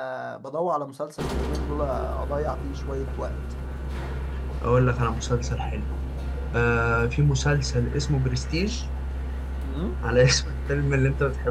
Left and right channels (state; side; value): identical; both; correlation 1.00